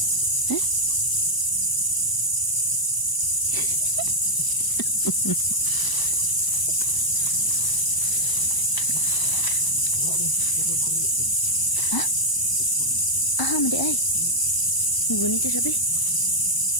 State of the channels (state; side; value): late; right; 1.0 ms